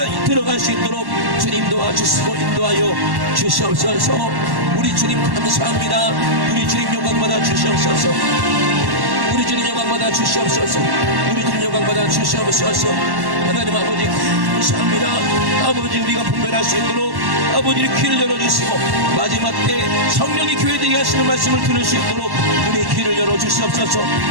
들어갈 수 있도록 주님 도와주시고 인도하여 주시옵소서. 우리 주님 감사합니다. 우리 주님 영광받아 주시옵소서. 우리 주님 영광받아 주시옵소서. 우리 주님 영광받아 주시옵소서. 하나님 아버지 감사합니다. 아버지 우리가 분별할 수 있도록 아버지의 귀를 열어주시고 마지막 때 성령이 교회되게 하시는 말씀을 들을 수 있도록 우리 귀를 열어주시옵소서.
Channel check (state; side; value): late; left; 1.1 ms